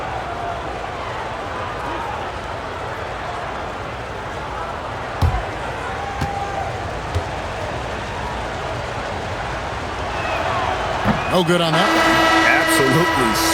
No good on that. Absolutely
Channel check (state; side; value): identical; both; correlation 1.00